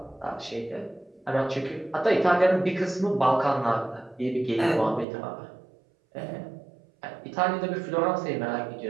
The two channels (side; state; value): left; drops out; at 5.1 s